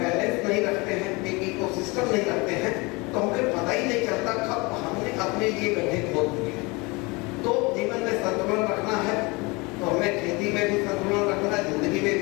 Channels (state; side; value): quieter; right; 26.1 dB